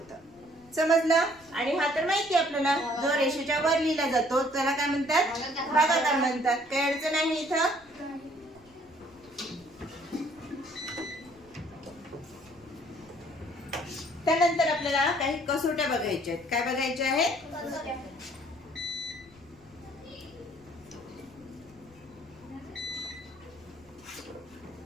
समजलं? आणि हा तर माहिती आपल्याला, जो रेषेच्या वर लिहिला जातो त्याला काय म्हणतात? भागाकार म्हणतात। काही अडचण आहे इथं? त्यानंतर आपल्याला काही कसोट्या बघायच्या आहेत। काय बघायच्या आहेत?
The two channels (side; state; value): left; noise; rumble, 29 dB below the sound